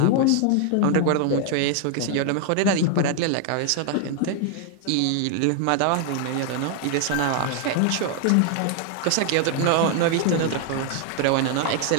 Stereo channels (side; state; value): both; different; correlation 0.00